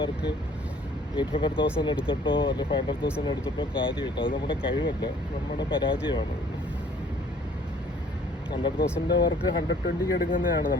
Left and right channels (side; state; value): both; normal; correlation 0.57